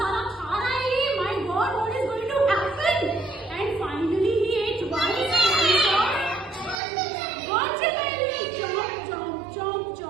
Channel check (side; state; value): left; drops out; at 6.8 s